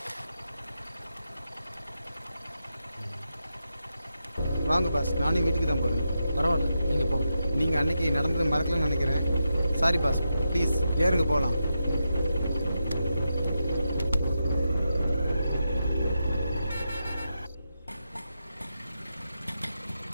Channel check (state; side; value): inverted; both; correlation -0.87